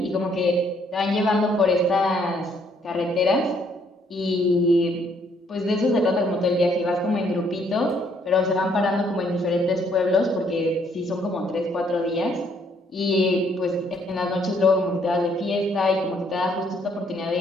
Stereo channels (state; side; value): normal; both; correlation 0.67